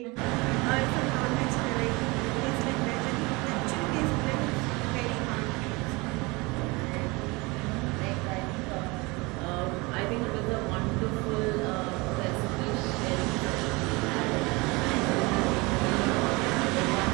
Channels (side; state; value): left; quieter; 25.2 dB